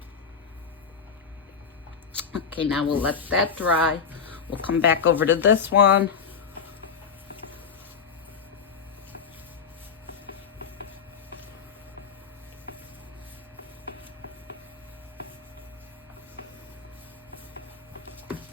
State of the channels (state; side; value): quieter; right; 6.2 dB